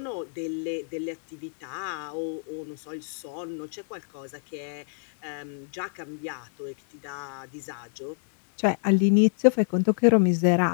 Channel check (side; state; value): right; silent; 60 dB below the other